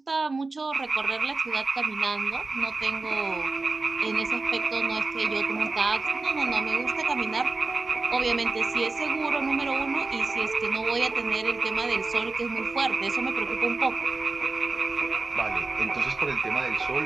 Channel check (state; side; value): quieter; left; 3.6 dB